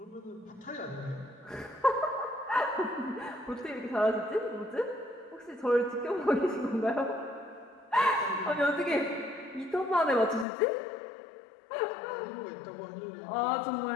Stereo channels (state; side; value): drops out; right; at 10.5 s